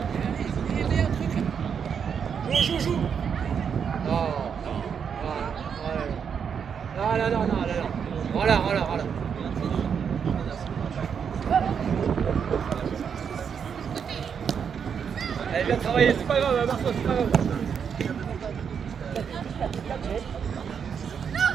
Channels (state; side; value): quieter; left; 7.1 dB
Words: Joue. Non. Voilà. Allez, bien travaillé, c'est pas grave, Marceau, c'est pas grave.